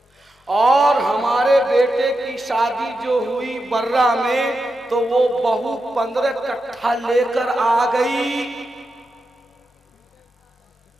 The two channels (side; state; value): both; normal; correlation 0.88